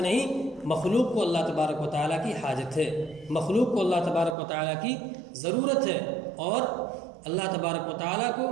نہیں، مخلوق کو اللہ تبارک و تعالیٰ کی حاجت ہے، مخلوق کو اللہ تبارک و تعالیٰ کی ضرورت ہے، اور اللہ تبارک و تعالیٰ کو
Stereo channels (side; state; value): left; drops out; at 4.4 s